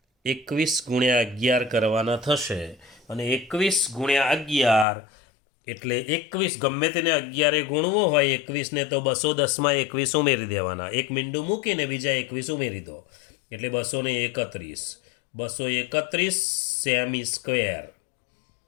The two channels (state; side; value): drops out; right; at 4.9 s